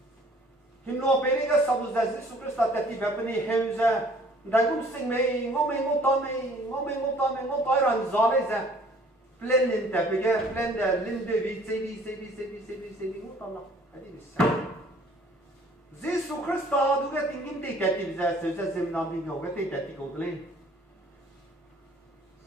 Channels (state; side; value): normal; both; correlation 0.55